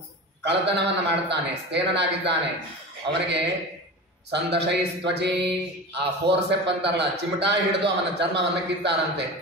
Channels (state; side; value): normal; both; correlation 0.30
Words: ಕಳತನವನ್ನು ಮಾಡ್ತಾನೆ, ಸ್ಥೇನನಾಗಿದ್ದಾನೆ, ಅವನಿಗೆ ಸಂದಶೈ ತ್ವಚಿ, ಆ ಫೋರ್ಸೆಪ್ ಅಂತಾರಲ್ಲ, ಚಿಮಟಾ ಹಿಡಿದು ಅವನ ಚರ್ಮವನ್ನು ಕಿತ್ತಾರಂತೆ.